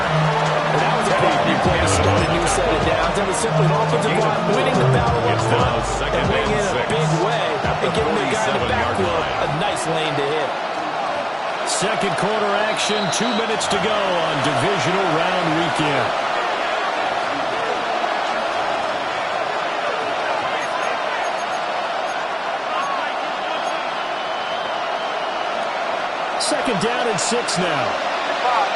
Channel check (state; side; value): identical; both; correlation 1.00